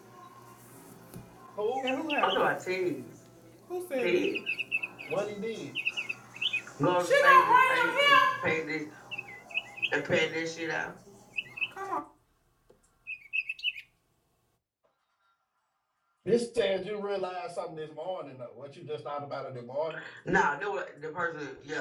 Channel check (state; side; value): identical; both; correlation 1.00